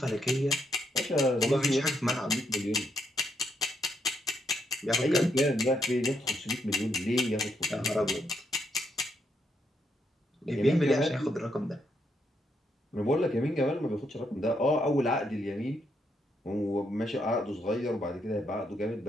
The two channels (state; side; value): normal; both; correlation 0.77